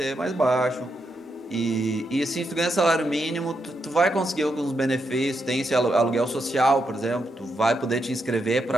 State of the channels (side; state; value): both; normal; correlation 0.82